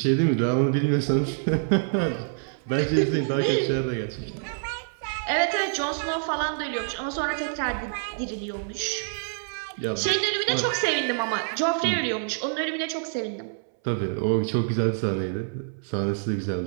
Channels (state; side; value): silent; left; 61 dB below the other